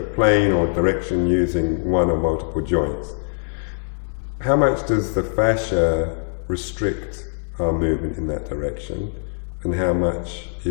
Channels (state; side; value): silent; right; 64 dB below the other